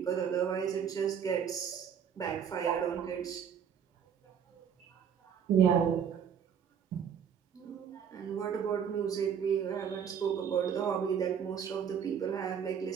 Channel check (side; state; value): left; quieter; 7.9 dB